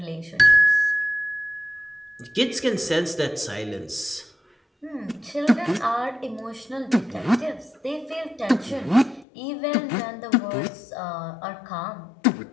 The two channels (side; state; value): right; drops out; at 9.2 s